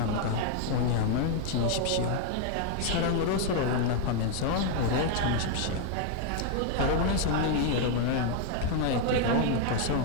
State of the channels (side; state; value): both; different; correlation 0.00